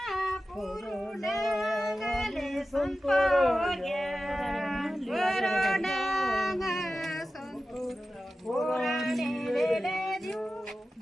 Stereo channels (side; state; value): both; normal; correlation 0.94